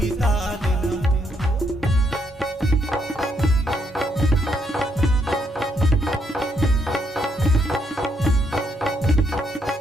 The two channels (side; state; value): both; normal; correlation 0.75